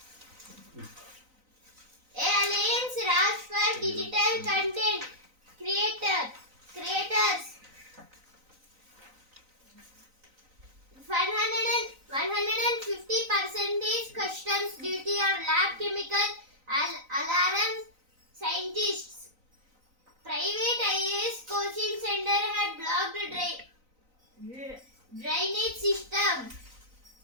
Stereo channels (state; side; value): late; left; 3.9 ms